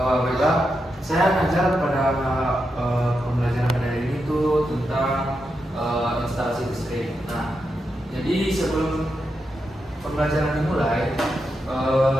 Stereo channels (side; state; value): both; normal; correlation 0.86